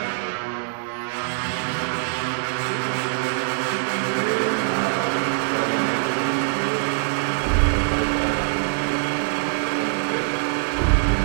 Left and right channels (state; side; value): silent; left; digital silence